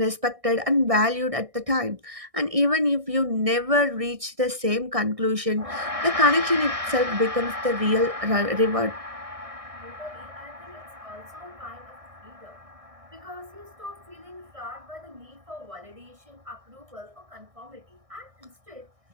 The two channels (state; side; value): late; left; 1.6 ms